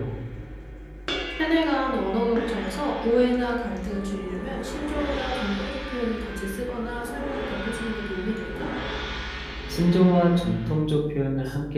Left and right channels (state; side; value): identical; both; correlation 1.00